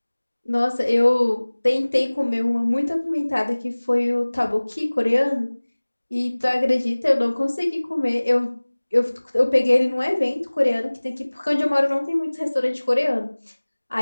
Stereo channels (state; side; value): inverted; both; correlation -1.00